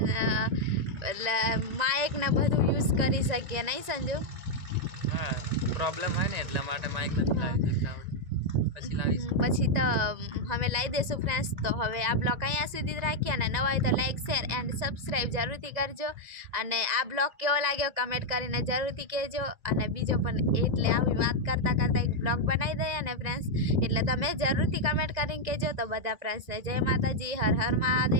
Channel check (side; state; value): left; late; 2.0 ms